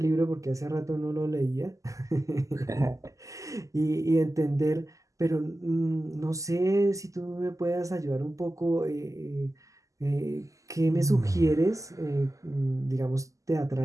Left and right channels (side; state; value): left; late; 0.16 ms